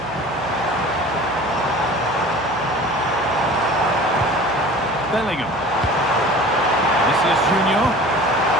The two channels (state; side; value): noise; right; hum, 19 dB below the sound